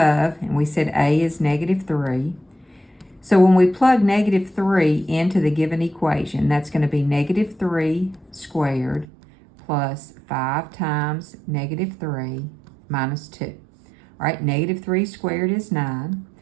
and we said A is -3. So when we plug -3 into the given equation, that's going to be -3 squared plus 5 times -3 minus 2. All right, -3 squared is 9.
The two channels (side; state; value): left; drops out; at 9.1 s